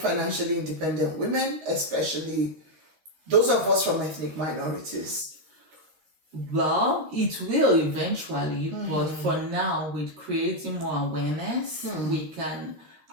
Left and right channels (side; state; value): left; late; 13 ms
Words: independent women, especially those of us from ethnic minorities? Well, it will eventually, but for now, with creating more awareness, we can